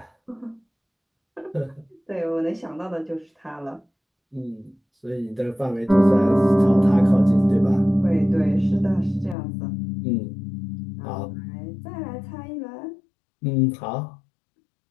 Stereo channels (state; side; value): drops out; right; at 9.3 s